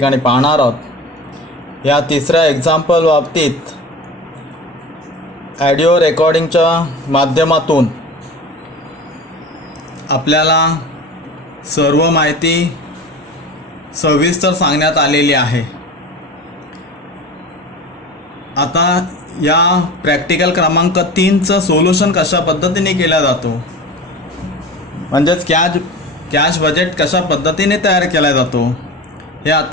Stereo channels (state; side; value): normal; both; correlation 0.34